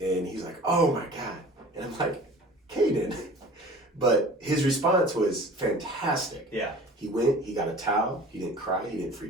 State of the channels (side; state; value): both; normal; correlation 0.44